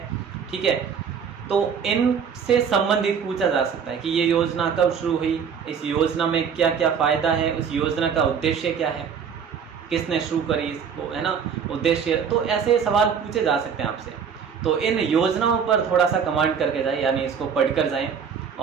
ठीक है, तो इनसे संबंधित पूछा जा सकता है कि ये योजना कब शुरू हुई, इस योजना में क्या क्या फ़ायदा है, उस योजना का उद्देश्य क्या है, किसने शुरू करी इसको, है ना, उद्देश्य। तो ऐसे सवाल पूछे जा सकते हैं आपसे। तो इन योजनाओं पर थोड़ा सा कमांड करके जाएं, यानी इसको पढ़कर जाएं।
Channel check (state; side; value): quieter; left; 6.9 dB